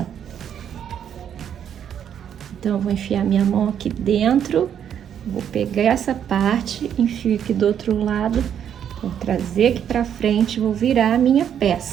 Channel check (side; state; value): left; quieter; 9.0 dB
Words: Então, eu vou enfiar minha mão aqui dentro, vou pegar essa parte, enfio aqui do outro lado, vou trazer aqui para frente, vou virar a minha